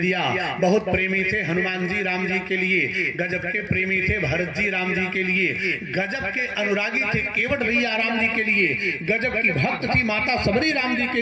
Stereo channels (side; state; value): both; identical; correlation 1.00